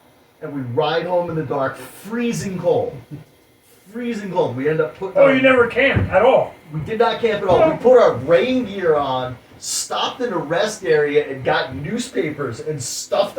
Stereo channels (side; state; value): both; identical; correlation 1.00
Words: And we ride home in the dark, freezing cold. Freezing cold. We end up putting Oh, our- you never camped at all. we did not camp at all. We put our rain gear on, stopped in a rest area, and got newspapers and stuffed